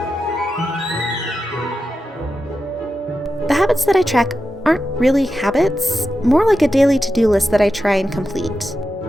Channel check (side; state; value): both; normal; correlation 0.90